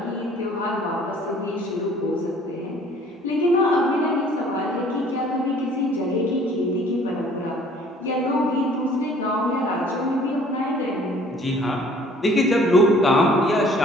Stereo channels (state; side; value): normal; both; correlation 0.55